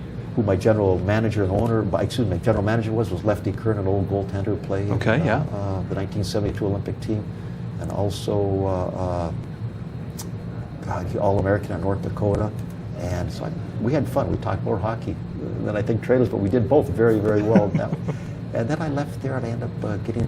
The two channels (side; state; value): both; identical; correlation 1.00